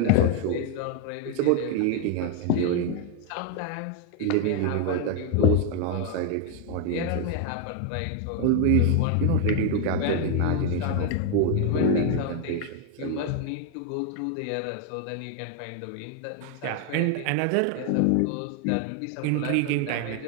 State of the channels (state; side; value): different; both; correlation 0.01